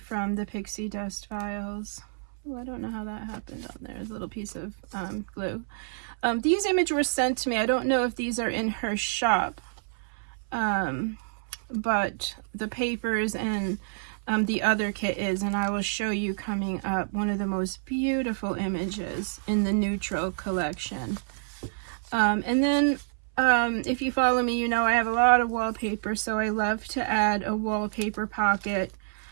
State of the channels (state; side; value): silent; left; 59 dB below the other